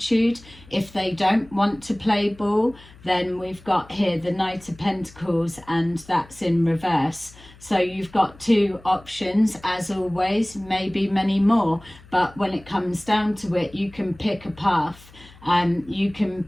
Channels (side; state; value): left; noise; hum, 23 dB below the sound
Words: if they don't want to play ball, then we've got here the Knight of Pentacles, and that's in reverse. So you've got two options, as always, maybe many more, but when it comes down to it, you can pick a path, and you can